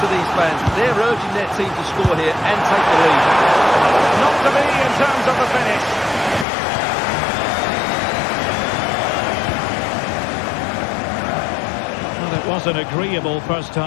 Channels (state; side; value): drops out; right; at 6.5 s